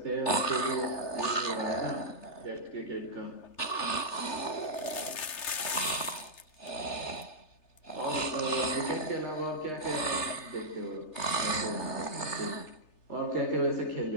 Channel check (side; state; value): right; late; 3.3 ms